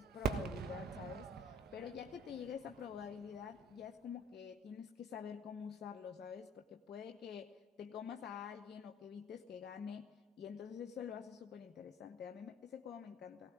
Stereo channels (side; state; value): both; normal; correlation 0.51